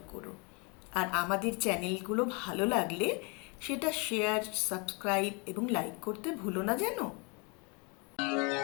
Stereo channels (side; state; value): right; quieter; 32.1 dB